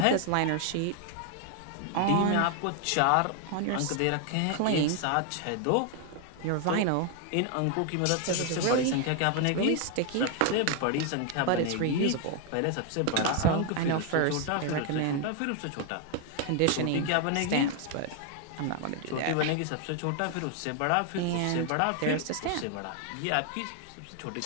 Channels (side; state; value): both; different; correlation 0.00